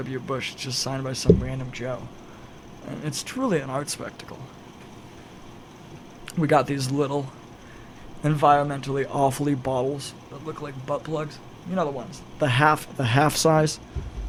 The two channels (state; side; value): identical; both; correlation 1.00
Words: Bush. It's just signed by some random Joe. And it's truly an art spectacle. We got these little, environmentally awfully bottles that look like butt plugs. You know the ones, the half size.